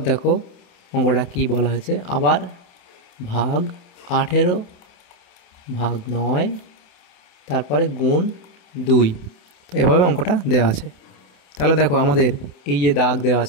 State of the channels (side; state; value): right; late; 28 ms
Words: দেখো অঙ্কটা কি বলা হয়েছে, আবার ভাগ 18 ভাগ 9, তারপরে গুণ 2। তো এভাবে অঙ্কটা দেওয়া আছে। তাহলে দেখো আমাদের এই যে দাগ দেওয়া